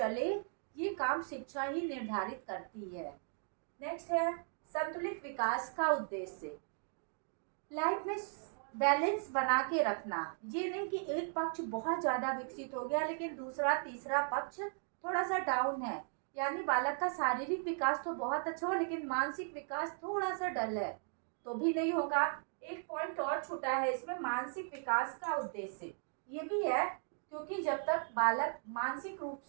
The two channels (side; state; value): left; silent; 53 dB below the other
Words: ये काम शिक्षा ही निर्धारित करती है। नेक्स्ट है संतुलित विकास का उद्देश्य। लाइफ में बैलेंस बना के रखना। ये नहीं कि एक पक्ष बहुत ज्यादा विकसित हो गया लेकिन दूसरा तीसरा पक्ष थोड़ा सा डाउन है। यानी बालक का शारीरिक विकास तो बहुत अच्छा हो लेकिन मानसिक विकास थोड़ा सा डल है तो भी नहीं होगा। एक पॉइंट और छूटा है इसमें, मानसिक विकास का उद्देश्य ये भी है, क्योंकि जब तक बालक मानसिक रूप